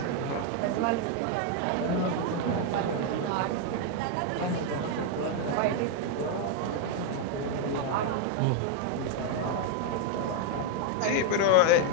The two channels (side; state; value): both; different; correlation 0.00